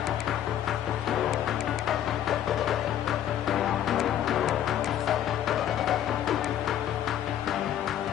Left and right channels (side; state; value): right; quieter; 10.9 dB